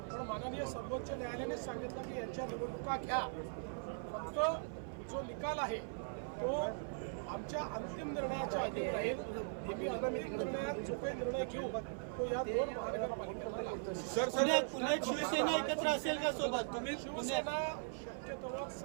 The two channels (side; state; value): left; silent; 51 dB below the other